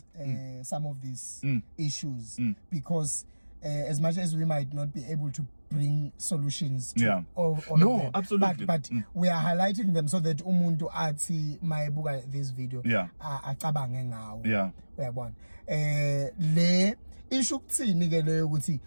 some of these issues because as much as we might not be able to bring solutions to all of them, absolutely. But we are highlighting them so that umuntu athi mayibuka this video acabange ngawo uyabona. Le issue kuthini ke leyo ukuthi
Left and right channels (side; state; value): both; inverted; correlation -1.00